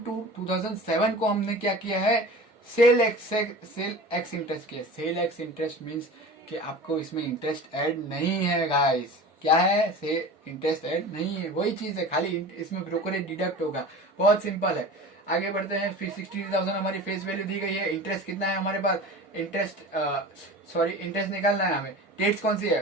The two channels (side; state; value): both; normal; correlation 0.36